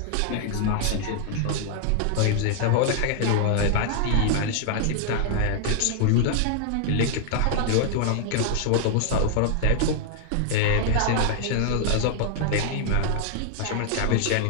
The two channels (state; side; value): different; both; correlation 0.00